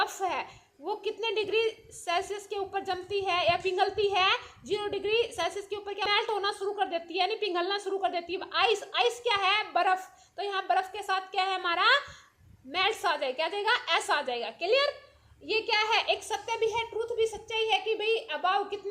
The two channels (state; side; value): identical; both; correlation 1.00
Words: है वो कितने डिग्री सेल्सियस के ऊपर जमती है या पिघलती है। 0 डिग्री सेल्सियस के ऊपर क्या मेल्ट होना शुरू कर देती है, यानी पिघलना शुरू कर देती है। आइस, आइस क्या है, बर्फ। तो यहाँ बर्फ के साथ क्या है हमारा, मेल्ट्स आ जाएगा, क्या आ जाएगा, एस आ जाएगा। क्लियर। ये क्या है, एक सत्य भी है, ट्रूथ भी सच्चाई है कि भाई अबाव